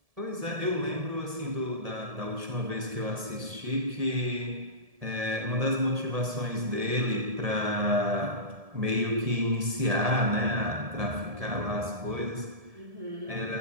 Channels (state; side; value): late; left; 1.7 ms